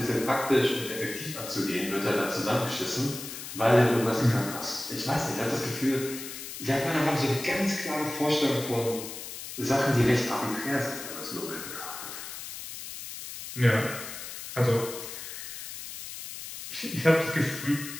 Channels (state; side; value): noise; left; hiss, 10 dB below the sound